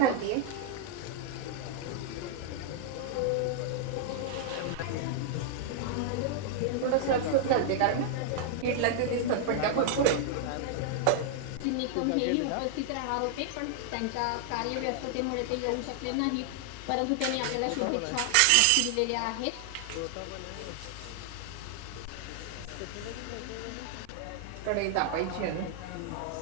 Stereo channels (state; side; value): different; both; correlation -0.01